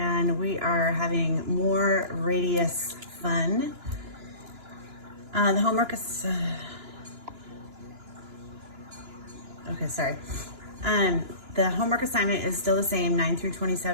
we are having more radius fun. The homework is, the homework assignment is still the same, 9 through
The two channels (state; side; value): late; left; 2.9 ms